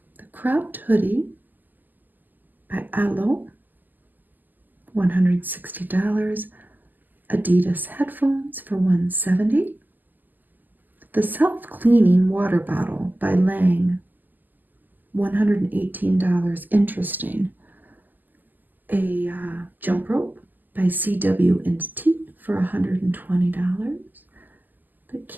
The cropped hoodie by Elle, $160. Adidas headphones for $170. The self-cleaning water bottle by Lang, $118. Interesting. A jump rope by CW&T for $120. The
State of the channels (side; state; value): left; late; 0.086 ms